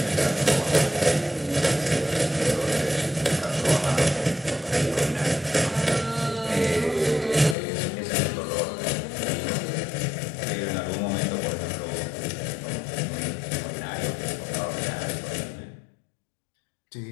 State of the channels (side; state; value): right; drops out; at 7.6 s